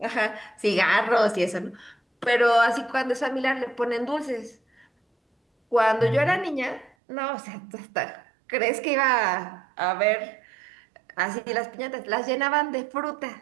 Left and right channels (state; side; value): drops out; left; at 6.9 s